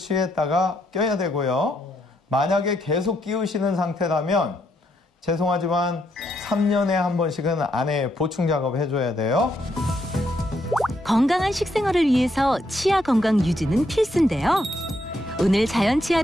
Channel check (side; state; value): both; normal; correlation 0.76